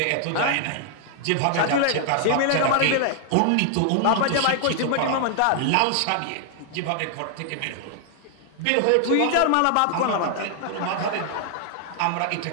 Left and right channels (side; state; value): both; different; correlation 0.00